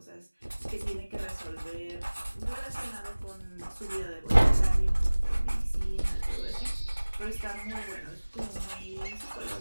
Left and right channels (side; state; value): both; inverted; correlation -1.00